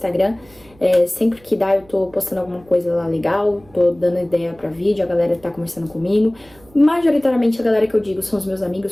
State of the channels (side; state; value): right; noise; hum, 27 dB below the sound